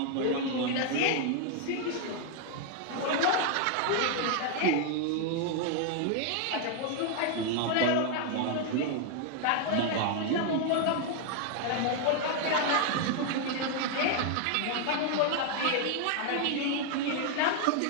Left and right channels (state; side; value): different; both; correlation 0.00